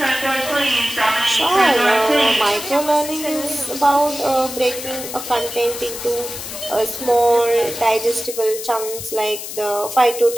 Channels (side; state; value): left; noise; hiss, 9 dB below the sound